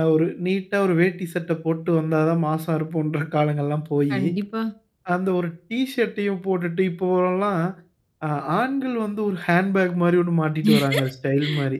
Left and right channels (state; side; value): identical; both; correlation 1.00